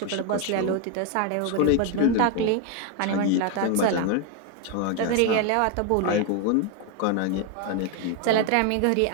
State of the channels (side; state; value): both; different; correlation 0.01